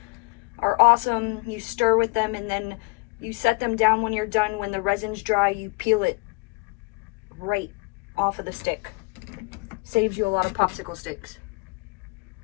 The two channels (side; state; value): right; quieter; 29.0 dB